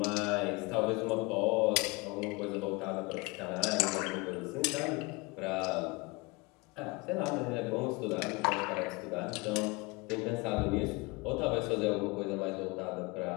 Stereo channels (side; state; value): right; quieter; 25.8 dB